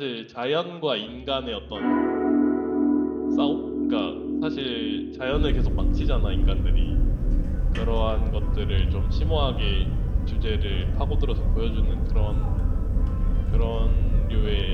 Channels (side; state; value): both; identical; correlation 1.00